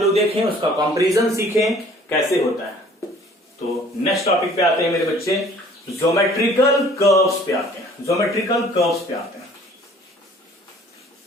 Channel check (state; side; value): normal; both; correlation 0.53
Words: देखें, उसका कंपैरिजन सीखें कैसे होता है। तो नेक्स्ट टॉपिक पे आते हैं मेरे बच्चे, ज्योमेट्रिकल कर्व्स पे आते हैं, ज्योमेट्रिकल कर्व्स पे आते हैं,